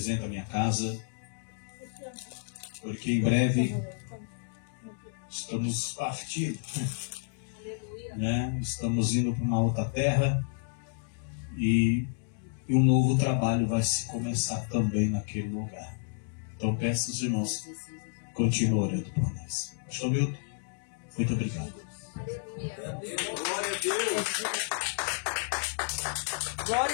a minha casa, porque em breve estamos partindo, né? Estamos indo para uma outra terra e um novo trabalho vai se começar também naquele lugar. Então peço aos irmãos, continuem orando por nós. Pastor Milton, muito obrigado. Glória a Deus.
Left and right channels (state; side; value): silent; right; digital silence